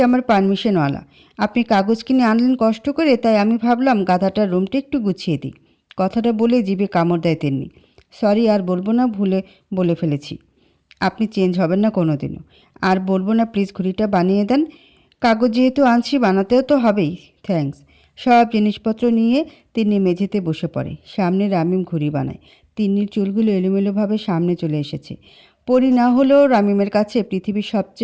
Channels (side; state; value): both; identical; correlation 1.00